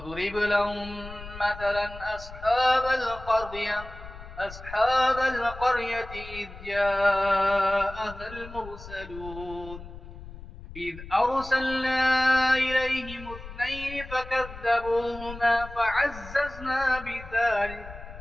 لهم مثلا أصحاب القرية إذ جاءها المرسلون إذ أرسلنا إليهم 2 فكذبوهما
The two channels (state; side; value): noise; left; rumble, 14 dB below the sound